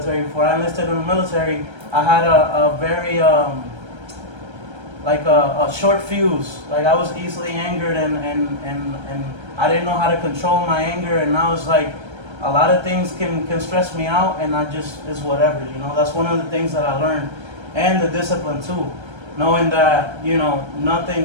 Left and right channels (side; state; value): left; late; 1.3 ms